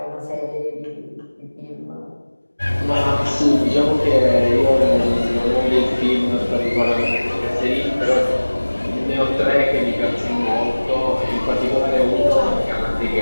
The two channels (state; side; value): inverted; both; correlation -1.00